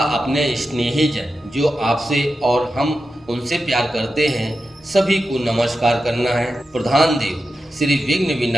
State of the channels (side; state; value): both; normal; correlation 0.90